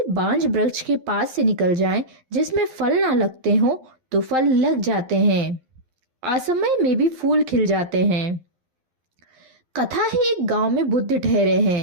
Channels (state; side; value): late; left; 11 ms